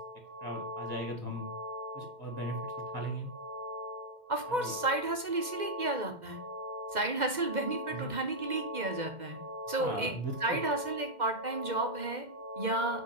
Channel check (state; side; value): late; left; 2.1 ms